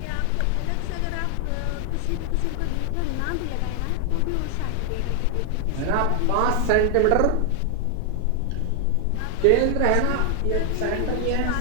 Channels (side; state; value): both; different; correlation 0.00